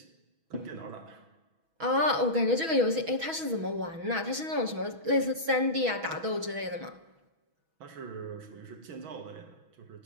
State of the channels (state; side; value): late; left; 6.2 ms